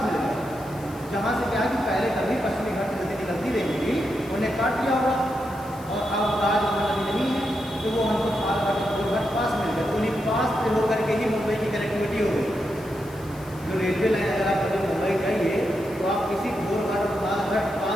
मिल गया। जहाँ से क्या है कि पहले कभी पश्चिमी घाट से नदी निकलती रहेगी, उन्हें काट दिया होगा, और अब आज नदी नहीं है, तो वो हमको थाल घाट और गोर घाट पास मिल गया। तो उन्हीं पास से होकर के ही मुंबई की कनेक्टिविटी हो गई। जो रेलवे लाइन अगर आप कभी मुंबई जाइए तो आप किसी गोर घाट और थाल घाट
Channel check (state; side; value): noise; left; hiss, 22 dB below the sound